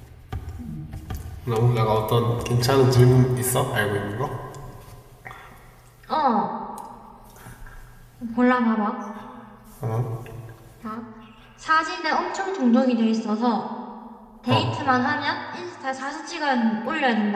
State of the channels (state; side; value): identical; both; correlation 1.00